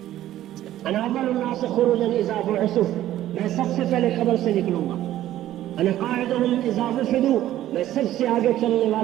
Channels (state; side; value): quieter; left; 13.4 dB